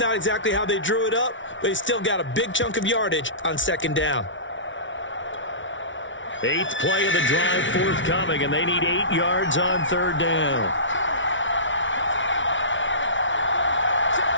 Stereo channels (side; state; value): right; late; 0.56 ms